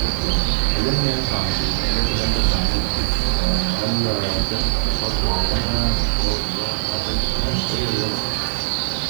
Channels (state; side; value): silent; left; 59 dB below the other